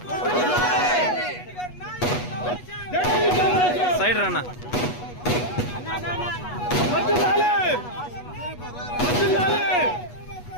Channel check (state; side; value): late; right; 8.2 ms